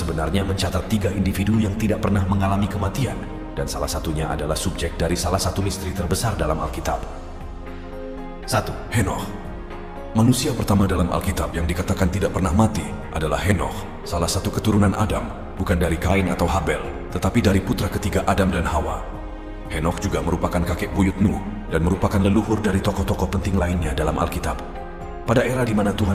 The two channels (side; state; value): both; identical; correlation 1.00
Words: mencatat tiga individu yang tidak pernah mengalami kematian, dan salah satunya adalah subjek dari salah satu misteri terbesar dalam Alkitab. 1. Henokh. Manusia pertama dalam Alkitab yang dikatakan tidak pernah mati adalah Henokh, salah satu keturunan Adam, bukan dari Kain atau Habel, tetapi dari putra ketiga Adam dan Hawa. Henokh juga merupakan kakek buyut Nuh dan merupakan leluhur dari tokoh-tokoh penting lainnya dalam Alkitab. Pada era di mana